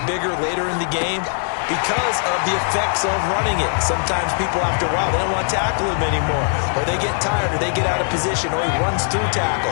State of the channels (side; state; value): right; silent; digital silence